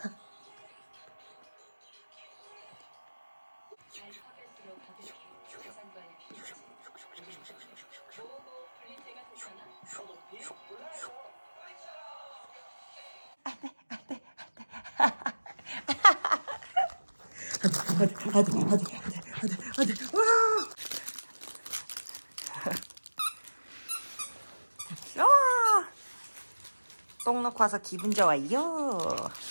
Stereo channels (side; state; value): both; inverted; correlation -1.00